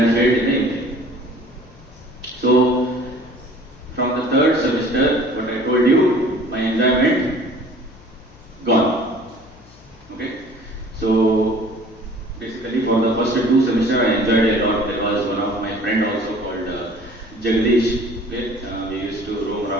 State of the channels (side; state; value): left; noise; hum, 25 dB below the sound